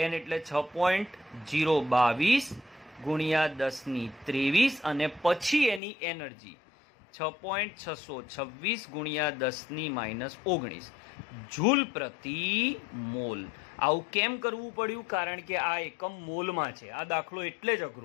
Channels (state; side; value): drops out; right; at 5.8 s